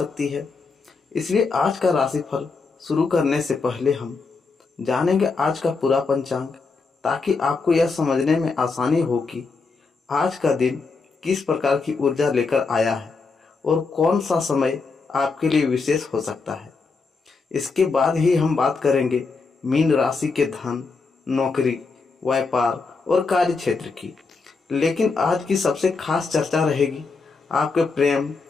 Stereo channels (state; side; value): quieter; right; 4.4 dB